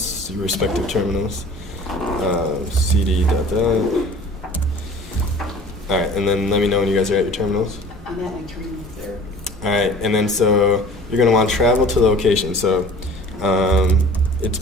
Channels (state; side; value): normal; both; correlation 0.45